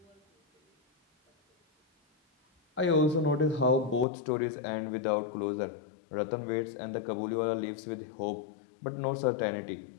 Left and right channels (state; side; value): drops out; right; at 4.0 s